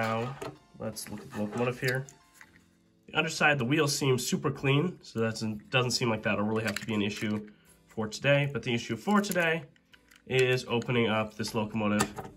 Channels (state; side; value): identical; both; correlation 1.00